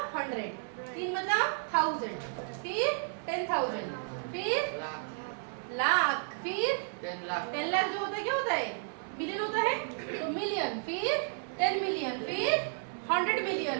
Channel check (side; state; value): left; silent; 56 dB below the other